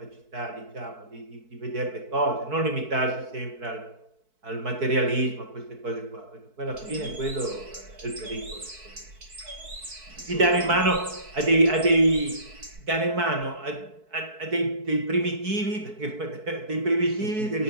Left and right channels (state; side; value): late; left; 4.6 ms